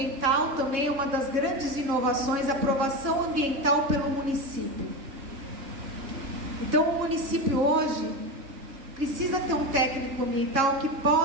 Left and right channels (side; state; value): left; late; 3.6 ms